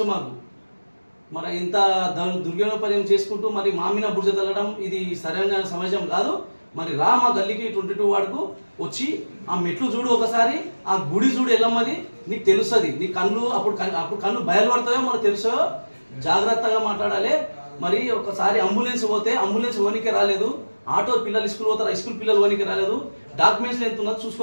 మాకు. మరి ఇంత దుర్వినియోగపర్యం చేసుకుంటూ మరి మామిన బుర్జ తగ్గడం ఇది సరైన సమాజం కాదు. మరి మా గల్లీకి 22 వార్డుకు వచ్చి ఆ మెట్లు చూడు, ఒకసారి ఆ గుడి చూడు ఎల్లమ్మది, నీకు తెలుస్తుంది. నీ అప్పుడు కళ్ళు బయలుపడతాయో మనకు తెలుసో. జాగ్రత్తగా మాట్లాడాలి. మరి ఒకసారి అంబులెన్స్ పోతే అంబులెన్స్ ఓనికి రాలేదు, ఆటో పిల్లలు స్కూల్ పోతారు, స్కూల్ పిల్లలు ఓనికి రాలేదు. డాక్యుమెంట్స్ ఎంత ఉన్నది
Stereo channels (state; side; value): inverted; both; correlation -1.00